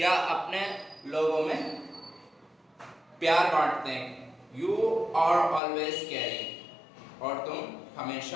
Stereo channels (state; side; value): drops out; right; at 5.6 s